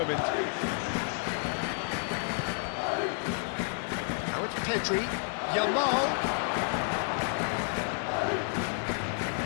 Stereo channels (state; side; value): silent; right; 57 dB below the other